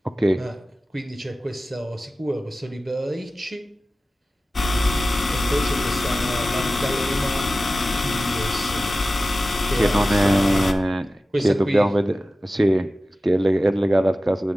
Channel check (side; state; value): both; normal; correlation 0.95